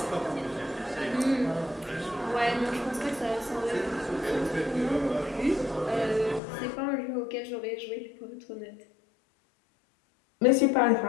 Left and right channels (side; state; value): right; drops out; at 6.4 s